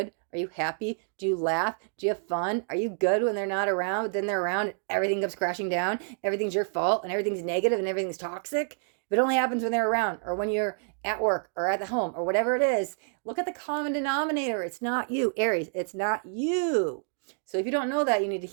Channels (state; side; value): silent; left; 59 dB below the other